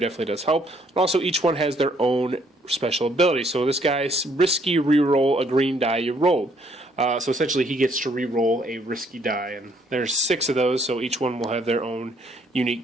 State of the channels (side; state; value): both; normal; correlation 0.67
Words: does help. And also, each one has their own special ability. So this guy's risky reroll a green die you rolled. So essentially, he gets to re-roll a risky die, and there's 6 of those, so each one will have their own